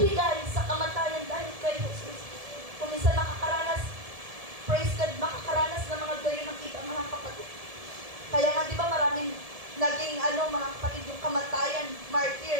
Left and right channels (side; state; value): left; late; 1.7 ms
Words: sa kamatayan dahil kay Jesus. Kung gayon nakita mga kapatid. Kaya nga, di ba maraming naging mga kapatid, yung kamatayan,